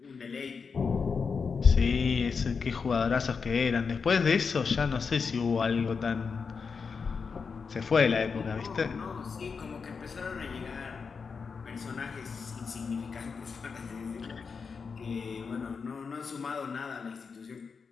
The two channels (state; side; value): quieter; right; 5.4 dB